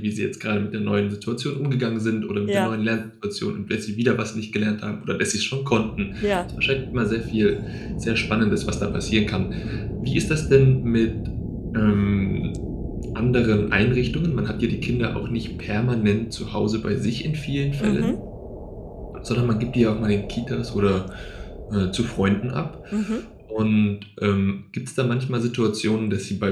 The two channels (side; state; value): both; identical; correlation 1.00